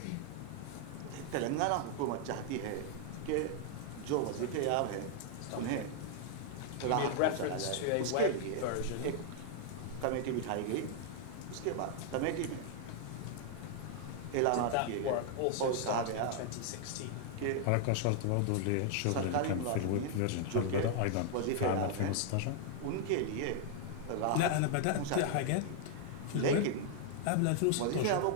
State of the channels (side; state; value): both; different; correlation 0.00